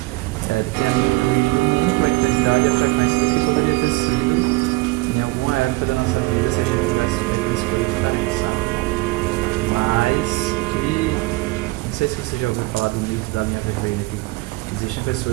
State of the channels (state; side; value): quieter; left; 22.0 dB